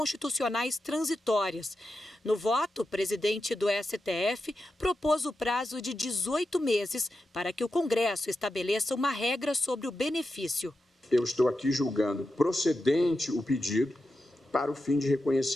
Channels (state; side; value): normal; both; correlation 0.90